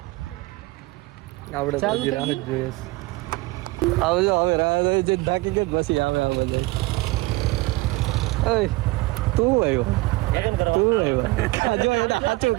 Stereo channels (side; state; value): left; quieter; 21.6 dB